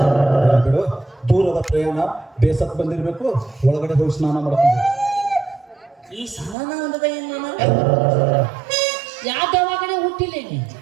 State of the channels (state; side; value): drops out; left; at 6.6 s